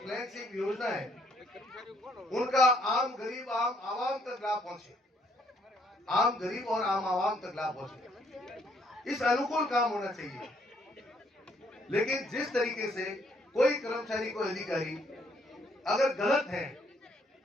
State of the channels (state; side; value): normal; both; correlation 0.68